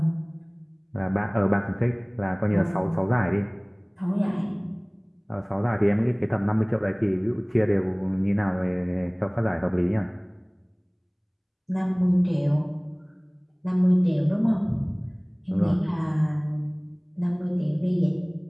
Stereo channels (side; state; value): both; identical; correlation 1.00